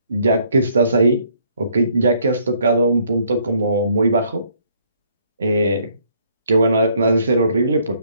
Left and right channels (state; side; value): inverted; both; correlation -0.66